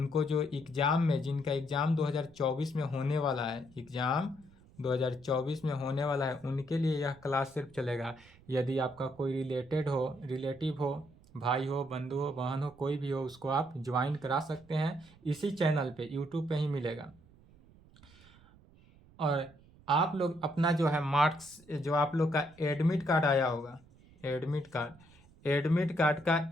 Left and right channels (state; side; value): noise; right; rumble, 26 dB below the sound